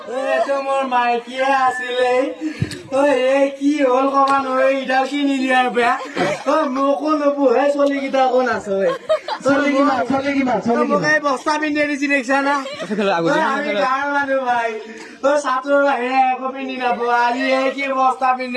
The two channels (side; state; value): both; identical; correlation 1.00